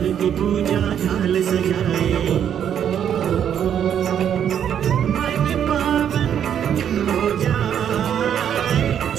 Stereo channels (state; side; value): quieter; left; 9.1 dB